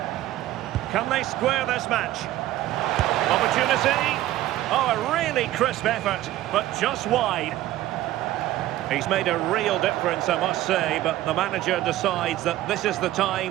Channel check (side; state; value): left; quieter; 14.8 dB